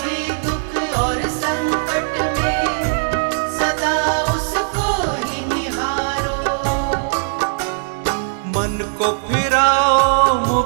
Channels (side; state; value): left; silent; digital silence